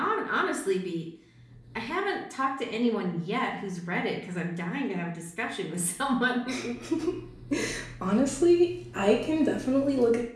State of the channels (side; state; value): both; identical; correlation 1.00